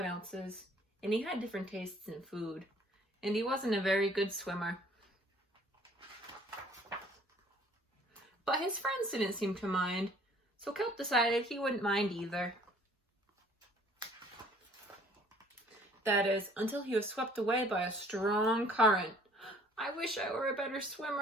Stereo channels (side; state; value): both; normal; correlation 0.56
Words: else's, and he had different tastes in food, and he wasn't a very good swimmer. But his friends didn't seem to mind, so Kelp decided he wouldn't mind either. That is, until he was swept away by a strong current. I wish I were a better